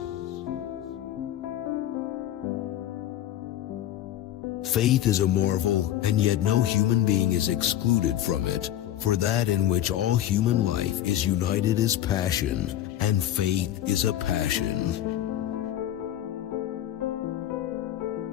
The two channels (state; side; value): quieter; right; 12.2 dB